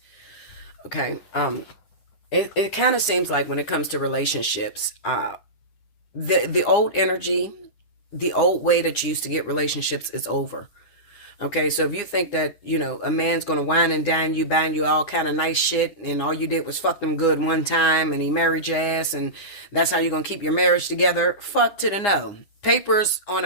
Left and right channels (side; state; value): right; late; 9.8 ms